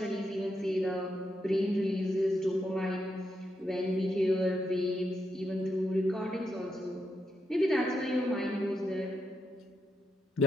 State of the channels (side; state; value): both; normal; correlation 0.82